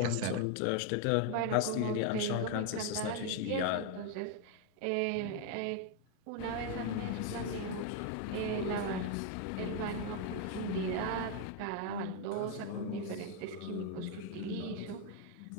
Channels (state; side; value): different; both; correlation 0.01